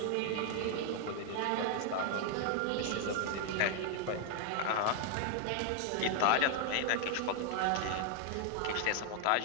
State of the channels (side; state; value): both; different; correlation 0.00